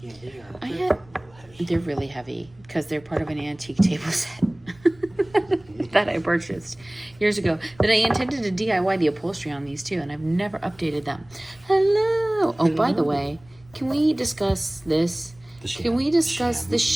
they are. They're really heavy because they're part of an antique table set that I purchased years ago. That I intended to DIY the upholstery on these too, and I've never updated them. Hello. Oh, by the way, can we discuss this? Can we discuss the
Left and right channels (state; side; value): noise; right; rumble, 27 dB below the sound